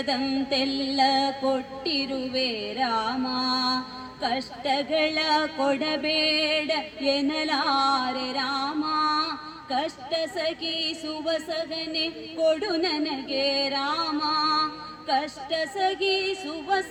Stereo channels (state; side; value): identical; both; correlation 1.00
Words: ಕೊಟ್ಟಿರುವೆ ರಾಮ. ಕಷ್ಟಗಳ ಕೊಡಬೇಡ ಎನ್ನಲಾರೆ ರಾಮ, ಕಷ್ಟ ಸಗಿಸುವ ಸಗನೆ ಕೊಡು ನನಗೆ ರಾಮ. ಕಷ್ಟ ಸಗಿಸುವ